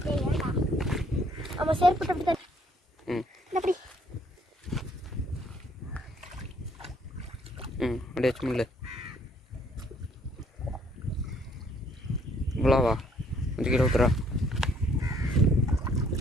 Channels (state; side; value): normal; both; correlation 0.64